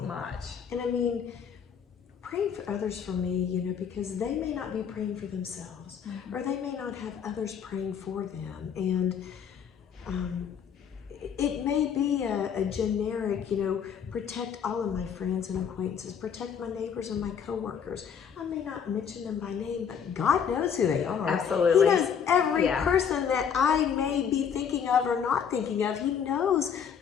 much. And I mean, praying for others for me, you know, because they may not be praying for themselves, or they may not have others praying for them. And it may be a generic, you know, protect all of my friends and acquaintances, protect my neighbors and my coworkers. I may not mention them by name, but God knows who they are. Absolutely. He knows every person that I may be thinking of or not thinking of. He knows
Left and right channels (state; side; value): quieter; right; 7.5 dB